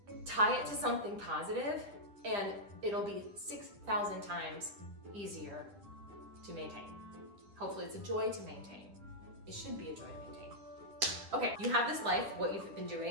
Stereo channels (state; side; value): late; left; 10 ms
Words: Tie it to something positive and it'll be 6,000 times easier to maintain. Hopefully it's a joy to maintain. It should be a joy to maintain. Okay, you have this life, what you've been